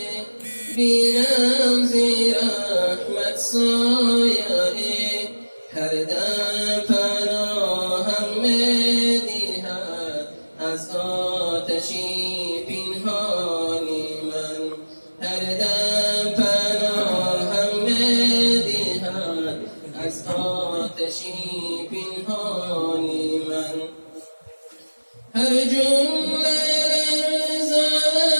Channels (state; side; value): inverted; both; correlation -1.00